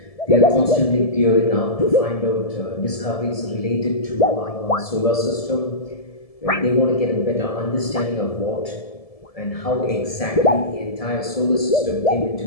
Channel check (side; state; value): right; late; 1.7 ms